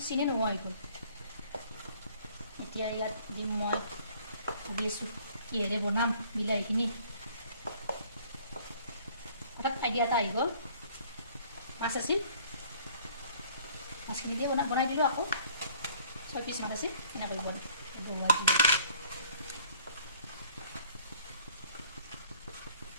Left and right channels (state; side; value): inverted; both; correlation -0.56